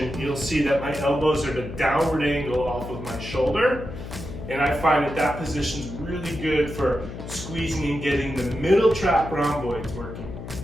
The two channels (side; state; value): left; noise; hum, 10 dB below the sound